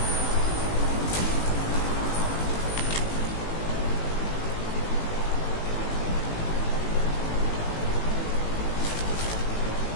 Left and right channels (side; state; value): right; late; 18 ms